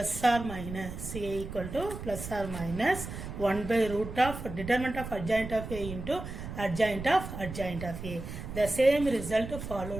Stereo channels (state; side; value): noise; right; rumble, 9 dB below the sound